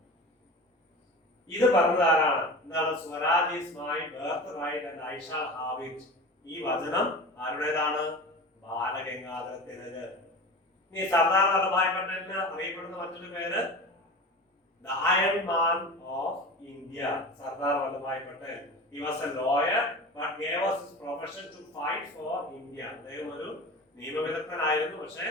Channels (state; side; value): normal; both; correlation 0.33